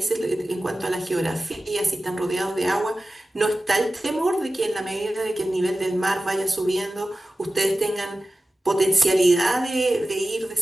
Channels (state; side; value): normal; both; correlation 0.95